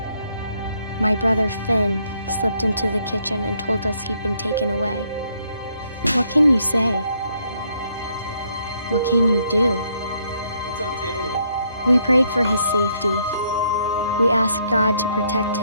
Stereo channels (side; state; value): both; inverted; correlation -0.71